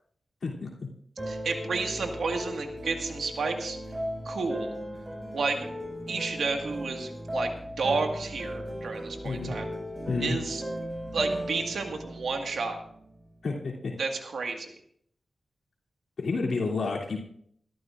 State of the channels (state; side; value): normal; both; correlation 0.89